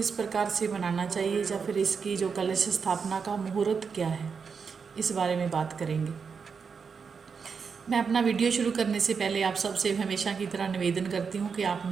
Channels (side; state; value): left; quieter; 5.8 dB